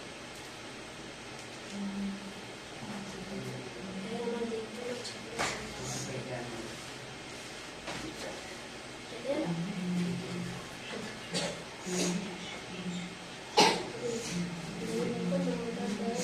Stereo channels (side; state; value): both; identical; correlation 1.00